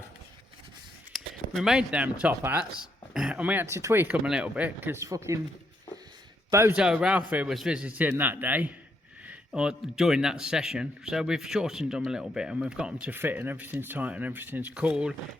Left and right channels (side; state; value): both; normal; correlation 0.76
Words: we made them top hats and we had to tweak them a little bit because fucking Bozo Ralfy was visiting that day or during that session, so we've shortened them a little bit and we've got them to fit and everything's tight and everything's cool,